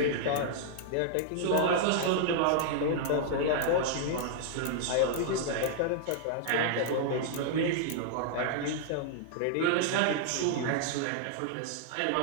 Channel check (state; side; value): different; both; correlation -0.01